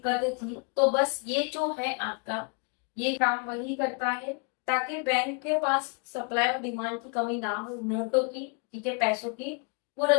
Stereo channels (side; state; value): right; quieter; 36.9 dB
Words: थी, तो बस ये जो है आपका ये काम वही करता है ताकि बैंक के पास सप्लाई और डिमांड की कमी ना हो नोटों की, ठीक है, पैसों की। वो